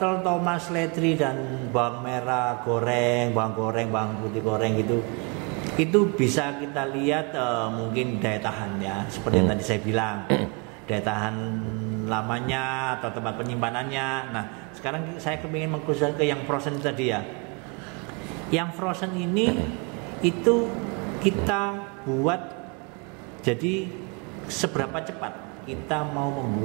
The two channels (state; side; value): quieter; left; 32.0 dB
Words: tomat, seledri dan bawang merah goreng, bawang putih goreng gitu. Itu bisa kita lihat mungkin daya tahan ya, seperti yang tadi saya bilang, daya tahan lamanya atau tempat penyimpanannya. Nah, sekarang saya kepingin mengkhususkan ke yang frozen tadi ya. Yang frozen ini itu kita buat jadi seberapa cepat kita mau